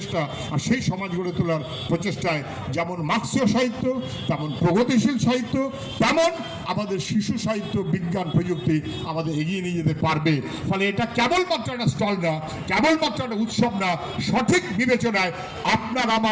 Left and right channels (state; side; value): identical; both; correlation 1.00